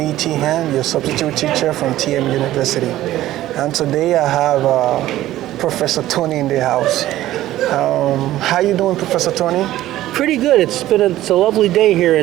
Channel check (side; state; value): left; quieter; 14.5 dB